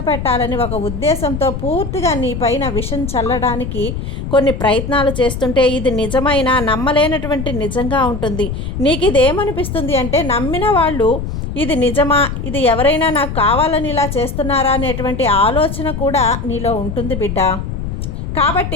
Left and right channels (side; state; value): left; noise; rumble, 5 dB below the sound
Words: ఒక ఉద్దేశంతో పూర్తిగా నీ పైన విషం చల్లడానికి కొన్ని ప్రయత్నాలు చేస్తుంటే, ఇది నిజమైన నమ్మలేనటువంటి నిజంగా ఉంటుంది. నీకు ఇది ఏమనిపిస్తుంది అంటే, నమ్మిన వాళ్ళు ఇది నిజమా, ఇది ఎవరైనా నాకు కావాలని ఇలా చేస్తున్నారా అనేటువంటి ఆలోచన కూడా నీలో ఉంటుంది బిడ్డ.